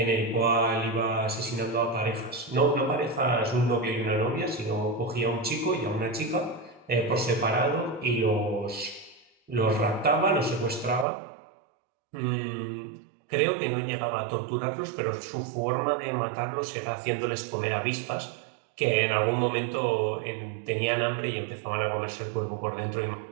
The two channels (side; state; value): left; drops out; at 11.1 s